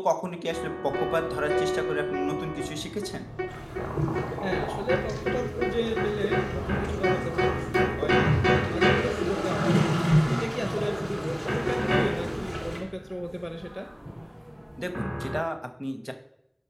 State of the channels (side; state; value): both; identical; correlation 1.00